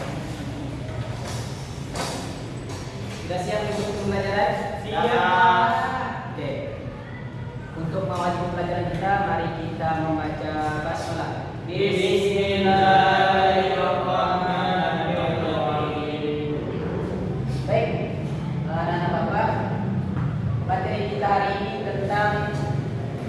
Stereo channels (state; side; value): identical; both; correlation 1.00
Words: Sudah siap untuk pembelajaran? Siap. Oke. Untuk mengawali pembelajaran kita, mari kita membaca basmalah. Bismillahirrahmanirrahim. Baik, anak-anak bapak, materi kita hari ini tentang